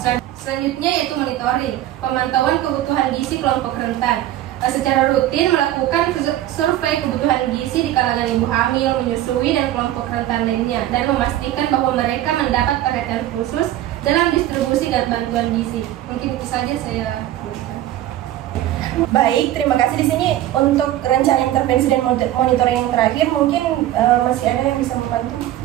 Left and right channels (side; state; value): left; quieter; 13.5 dB